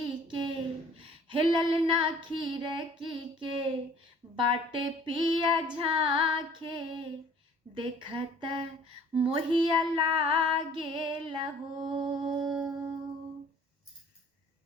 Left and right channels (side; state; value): both; normal; correlation 0.53